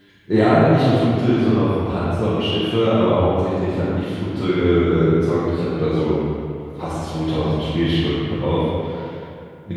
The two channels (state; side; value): identical; both; correlation 1.00